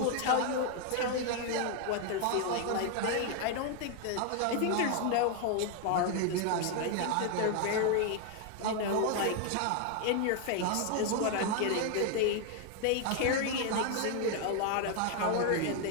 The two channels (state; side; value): different; both; correlation 0.00